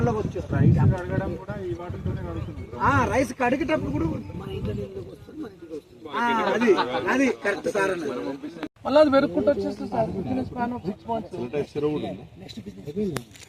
వచ్చేస్తారు. రైస్ కడిగేటప్పుడు కూడా అది కరెక్ట్ సార్ అన్నది. మళ్ళీ అది వెరుక్కుంటూ వచ్చేస్తుంది సార్. స్పాన్ ఆఫ్ 6 months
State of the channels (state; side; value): identical; both; correlation 1.00